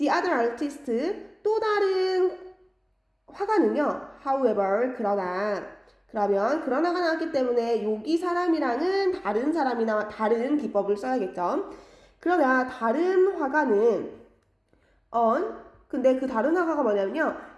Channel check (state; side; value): identical; both; correlation 1.00